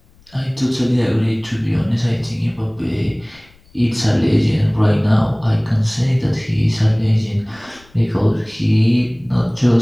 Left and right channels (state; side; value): noise; left; rumble, 29 dB below the sound